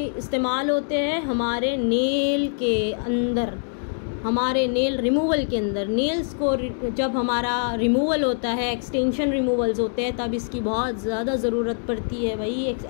इस्तेमाल होते हैं हमारे नेल के अंदर, हमारे नेल रिमूवल के अंदर। नेल्स को जब हमारा रिमूवल होता है, एक्सटेंशन रिमूवल्स होते हैं, तब इसकी बहुत ज़्यादा ज़रूरत पड़ती है भाई, एक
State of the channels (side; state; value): right; silent; digital silence